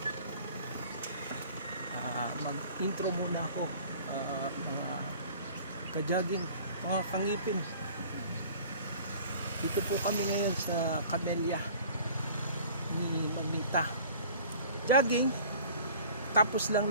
Mag-intro muna ako, mga ka-jogging, mga kangipin. Dito po kami ngayon sa Camellia ni Mamita. Jogging, tapos lang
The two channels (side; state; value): both; inverted; correlation -0.47